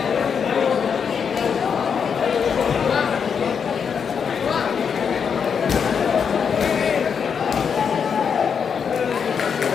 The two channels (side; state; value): right; quieter; 6.7 dB